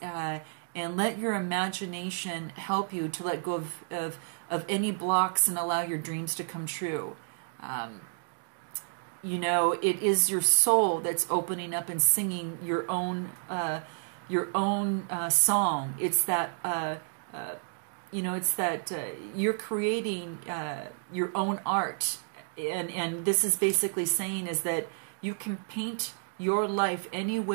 and let your imagination help you to let go of any blocks and allow your dreams to come true. You know, it is your soul that's opening up and singing your own song. It's that you know, it's that you're creating your own art, and this is basically saying is that you can paint your life any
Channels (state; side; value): silent; left; digital silence